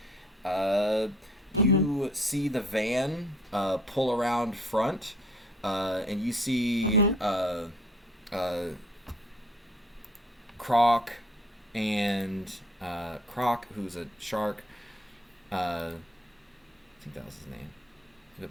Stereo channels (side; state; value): both; normal; correlation 0.59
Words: You see the van pull around front, and you see Croc and Croc, who's a shark. I think that was his name. Go